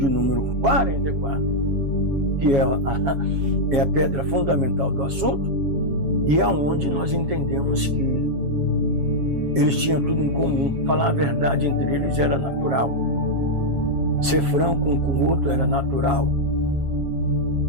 número 44, que é a pedra fundamental do assunto, e é onde nós entendemos que eles tinham tudo em comum. Falar a verdade entre eles era natural. Ser franco um com o outro era natural.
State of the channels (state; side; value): late; left; 7.3 ms